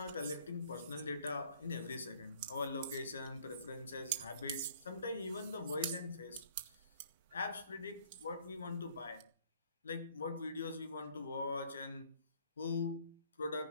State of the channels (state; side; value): inverted; both; correlation -0.59